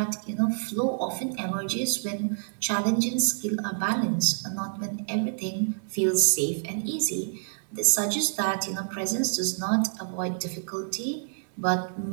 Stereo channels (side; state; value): left; silent; digital silence